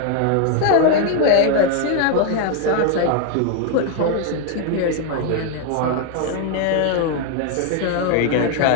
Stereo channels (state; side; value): different; both; correlation 0.00